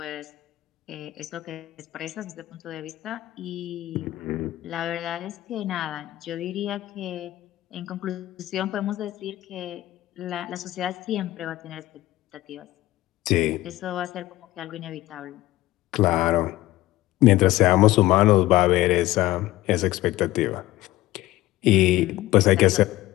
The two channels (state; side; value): quieter; right; 16.5 dB